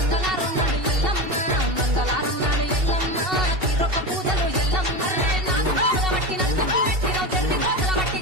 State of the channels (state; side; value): late; left; 2.7 ms